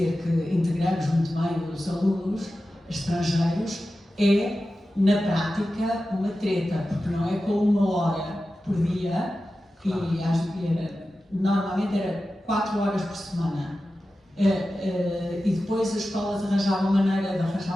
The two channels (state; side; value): normal; both; correlation 0.93